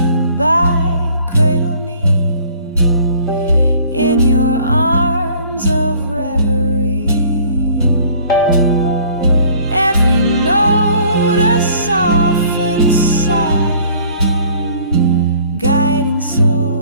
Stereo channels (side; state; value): both; inverted; correlation -0.54